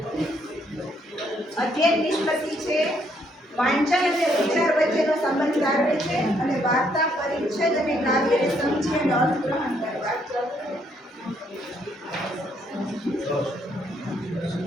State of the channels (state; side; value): normal; both; correlation 0.71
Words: અધ્યયન નિષ્પત્તિ છે વાંચન અને વિચાર વચ્ચેનો સંબંધ તારવે છે અને વાર્તા પરિચ્છેદ અને કાવ્યને સમજી અને અર્થગ્રહણ કરવા.